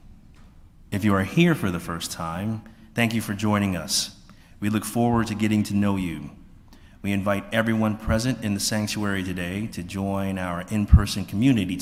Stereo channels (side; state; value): both; identical; correlation 1.00